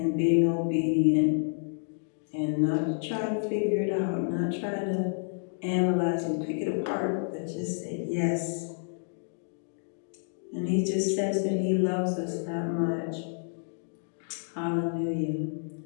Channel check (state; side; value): silent; right; digital silence